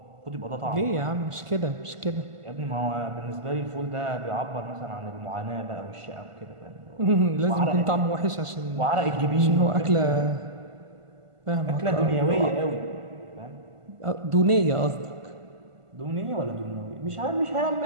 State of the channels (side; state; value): left; late; 1.5 ms